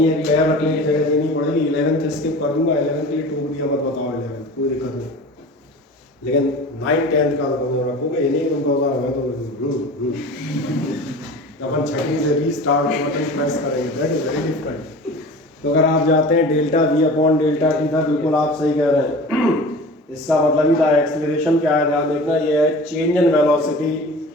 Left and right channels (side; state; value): both; normal; correlation 0.38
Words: एक पैर रखने की जगह देनी पड़ेगी। 11th स्किप कर दूंगा, 11th के लिए टोक दिया, मत बताओ 11th, कोई दिक्कत नहीं, लेकिन 9th 10th का तो रखोगे, ये नहीं तुम कहोगे हमें तो अपन छठी से रीस्टार्ट बटन प्रेस करेंगे, दैट इज वेरी डिफरेंट। तो अगर आप जाते हैं delta v upon delta T था, बिल्कुल आप सही कह रहे हैं, इसका मतलब ही था एक्सीलरेशन क्या है, ध्यान देखना, ये है change in velocity